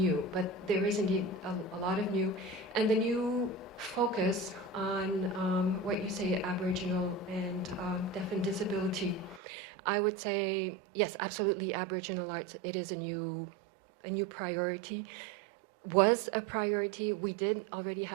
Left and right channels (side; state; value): left; drops out; at 9.4 s